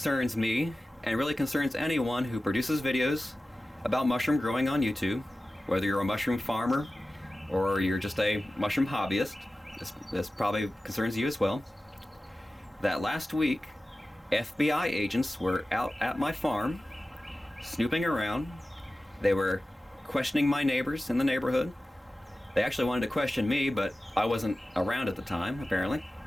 me and really concerns anyone who produces videos about mushroom growing on YouTube, whether you're a mushroom farmer or you're just a mushroom hobbyist. This probably concerns you as well. That last week, FBI agents were out at my farm, snooping around. They were questioning my neighbors in the neighborhood. They actually wanted to question me, but I wasn't around at the time, apparently.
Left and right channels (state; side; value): normal; both; correlation 0.95